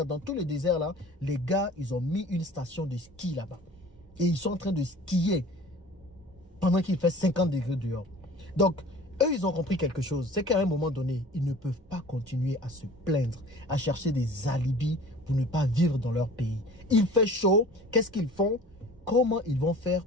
dans tous les déserts là, les gars, ils ont mis une station de ski là-bas. Et ils sont en train de skier pendant qu'il fait 50 degrés dehors. Donc, eux, ils ont compris quelque chose. C'est qu'à un moment donné, ils ne peuvent pas continuer à se plaindre, à chercher des alibis pour ne pas vivre dans leur pays. Il fait chaud. Qu'est-ce qu'ils font? Comment ils vont faire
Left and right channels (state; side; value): normal; both; correlation 0.44